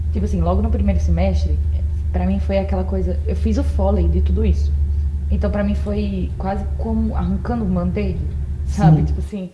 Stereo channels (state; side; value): identical; both; correlation 1.00